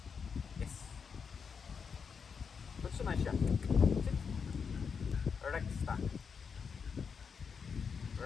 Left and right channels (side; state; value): right; quieter; 6.1 dB